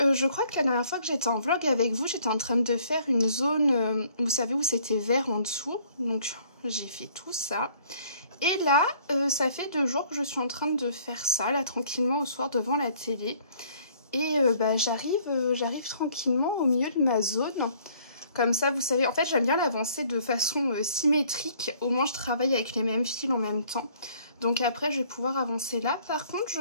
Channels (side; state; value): both; inverted; correlation -0.60